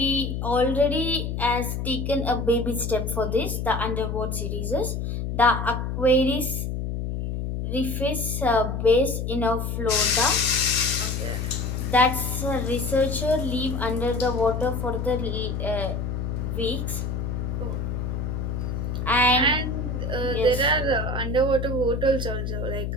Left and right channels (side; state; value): left; noise; hum, 3 dB below the sound